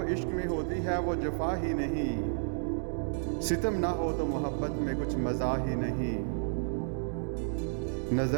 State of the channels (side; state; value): left; silent; digital silence